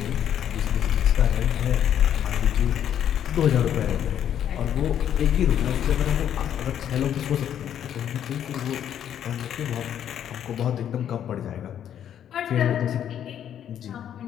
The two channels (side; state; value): right; quieter; 9.8 dB